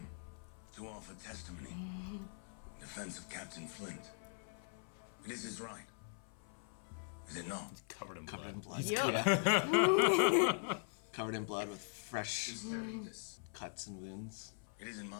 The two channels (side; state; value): right; silent; 50 dB below the other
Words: to offer testimony in defense of Captain Flint. It is his right. Is it not? Covered in blood. Covered in blood with fresh cuts and wounds. It isn't